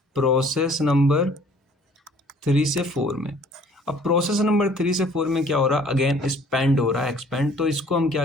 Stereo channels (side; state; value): both; normal; correlation 0.55